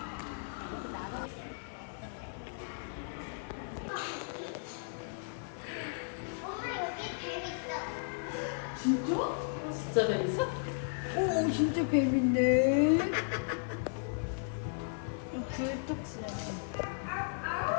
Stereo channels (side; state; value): right; silent; 54 dB below the other